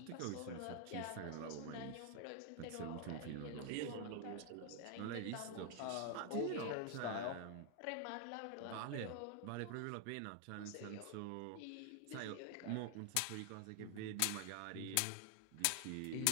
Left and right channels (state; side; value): different; both; correlation 0.00